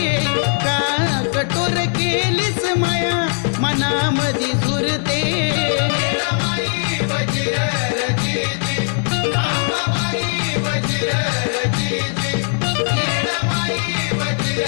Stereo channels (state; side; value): silent; right; digital silence